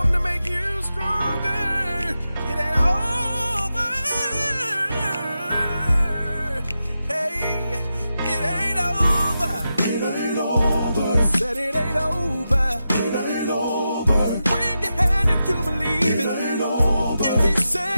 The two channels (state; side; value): inverted; both; correlation -0.89